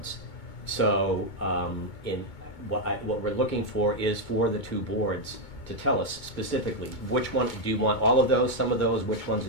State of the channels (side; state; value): right; late; 2.2 ms